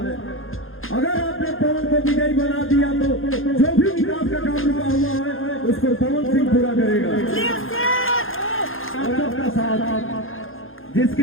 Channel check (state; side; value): late; right; 0.60 ms